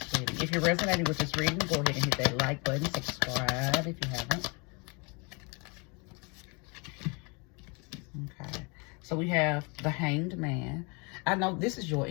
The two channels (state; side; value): quieter; right; 31.2 dB